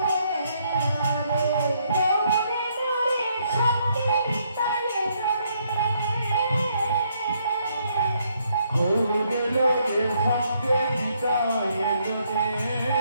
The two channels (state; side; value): inverted; both; correlation -0.72